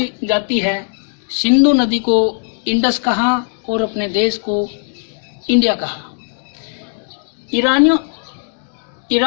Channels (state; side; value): silent; right; 58 dB below the other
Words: जाती है, सिंधु नदी को इंडस कहा और अपने देश को इंडिया कहा।